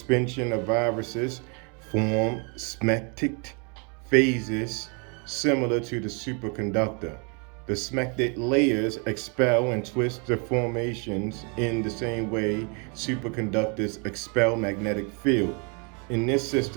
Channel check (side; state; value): left; quieter; 35.2 dB